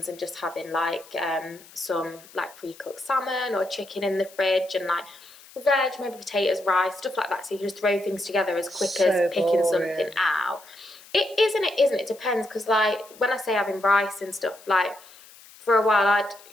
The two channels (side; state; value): left; noise; hiss, 22 dB below the sound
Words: and just having like some like pre-cooked salmon or chicken in the fridge and like veg, maybe potatoes, rice, stuff like that. So you can just throw things together as quick as picking something out. It is and it isn't. It depends, because like when I say having rice and stuff, like for a while I'd